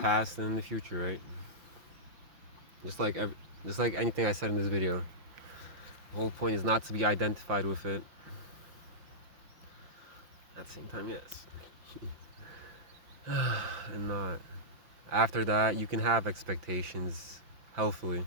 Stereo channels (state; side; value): late; left; 5.9 ms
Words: and in the future, right? Just like anything I said in this video. The whole point is not to be identified with it. At the same time, yes. And not. After that, you can have expectations